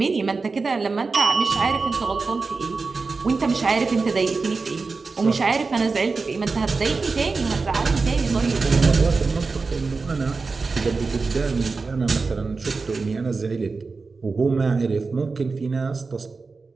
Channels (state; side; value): quieter; left; 4.2 dB